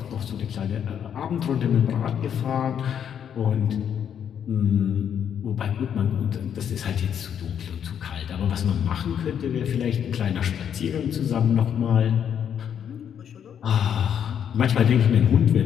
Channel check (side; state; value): right; quieter; 8.6 dB